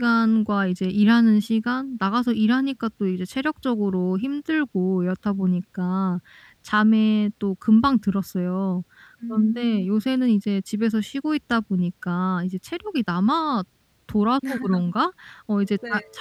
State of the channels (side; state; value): both; identical; correlation 1.00